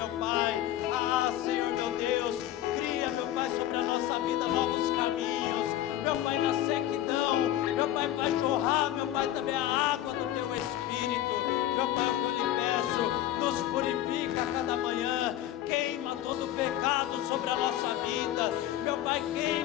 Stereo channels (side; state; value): right; quieter; 13.1 dB